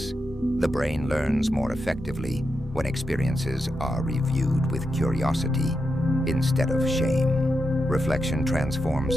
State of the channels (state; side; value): normal; both; correlation 0.87